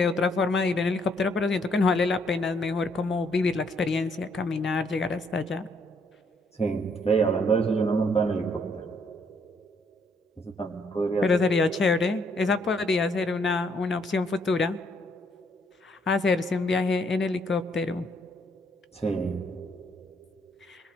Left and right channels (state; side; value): normal; both; correlation 0.70